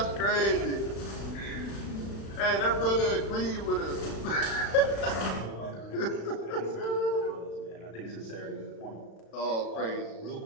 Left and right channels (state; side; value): late; right; 36 ms